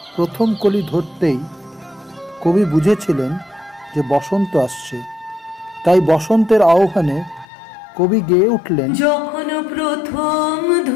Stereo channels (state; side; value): drops out; right; at 7.5 s